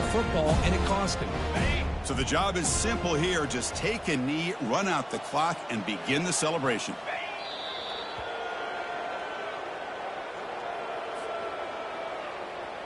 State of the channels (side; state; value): both; identical; correlation 1.00